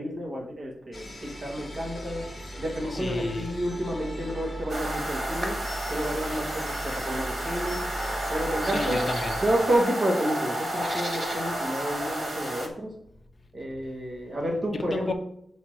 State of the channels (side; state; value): both; normal; correlation 0.90